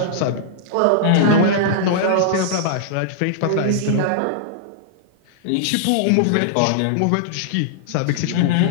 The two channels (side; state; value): both; different; correlation -0.02